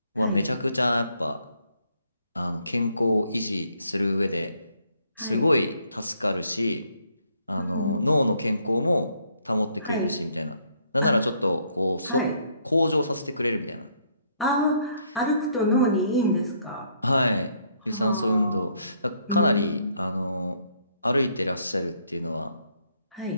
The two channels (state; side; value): inverted; both; correlation -0.69